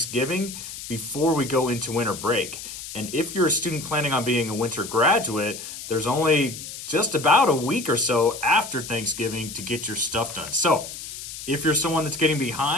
before we go into winter break. And if you're a student planning on being a winter graduate, there's only just about a week or so after Thanksgiving to get your stuff done. So if you're someone that's getting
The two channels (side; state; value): left; noise; hiss, 10 dB below the sound